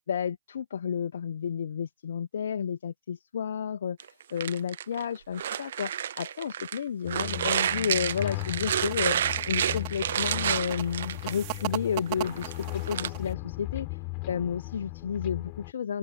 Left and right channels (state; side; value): inverted; both; correlation -0.61